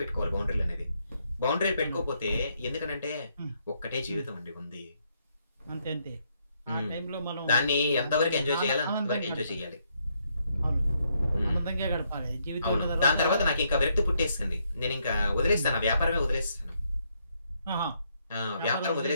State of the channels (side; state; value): both; inverted; correlation -0.74